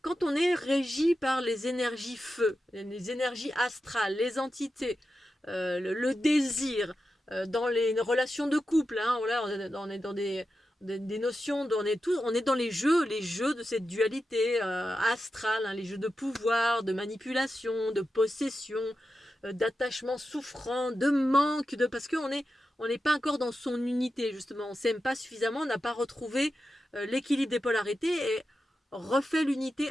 Quand on est régi par les énergies feu, les énergies astrales, les entités, le désir, dans les relations de couple, hein, voilà, on est dans des notions, on est dans les jeux de cette dualité astrale, hein, les jeux de pouvoir, de manipulation, de possession, d'attachement souffrant, de manque, parce qu'on n'est pas encore dans son unité, justement. On ne s'aime pas suffisamment, on n'a pas retrouvé l'équilibre des polarités et refait l'unité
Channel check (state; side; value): normal; both; correlation 0.90